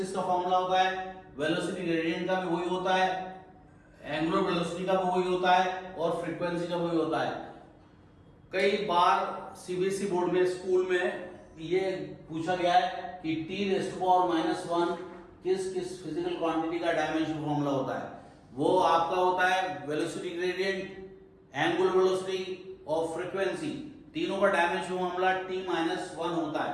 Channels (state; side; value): identical; both; correlation 1.00